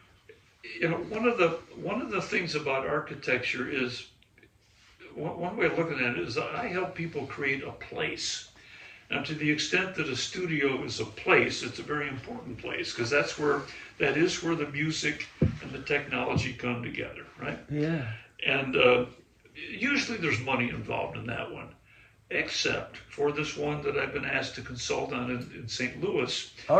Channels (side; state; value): both; identical; correlation 1.00